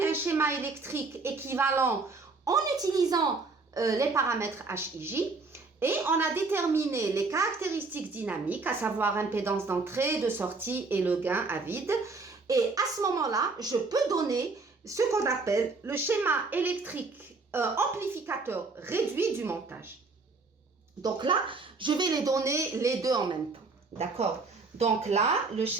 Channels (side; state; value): left; quieter; 4.0 dB